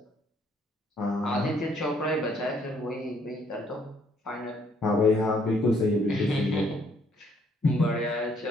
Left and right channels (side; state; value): both; normal; correlation 0.67